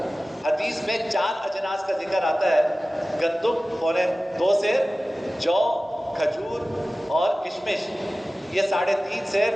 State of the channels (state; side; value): normal; both; correlation 0.96